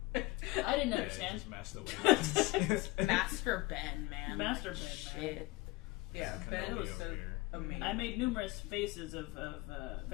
I didn't understand. Master Master Ben, man. Master Ben, man. Shit. Yeah, Ben was so amazing. I made numerous faces of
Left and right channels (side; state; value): right; quieter; 20.5 dB